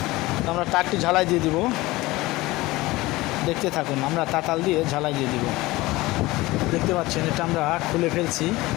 তো আমরা তারটি ঝালাই দিয়ে দিব, দেখতে থাকুন। আমরা তাতাল দিয়ে ঝালাই দিয়ে দিব। দেখতে পাচ্ছেন এটা আমরা খুলে ফেলছি,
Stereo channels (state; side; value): quieter; right; 19.8 dB